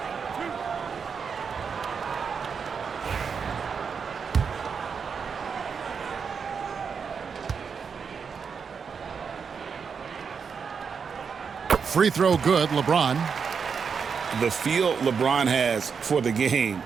Free throw good, LeBron. The feel LeBron has for the game,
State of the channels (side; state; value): left; quieter; 6.1 dB